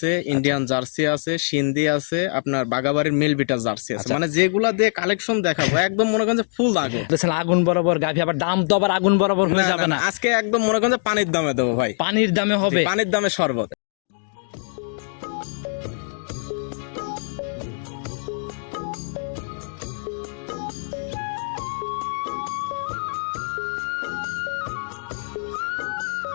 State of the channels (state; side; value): silent; right; 63 dB below the other